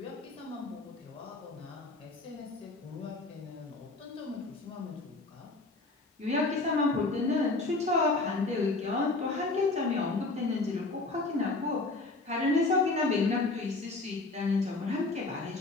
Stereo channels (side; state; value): right; quieter; 3.3 dB